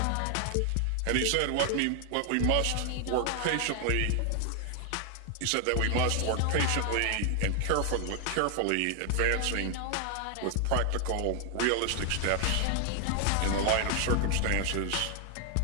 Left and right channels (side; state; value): both; different; correlation 0.00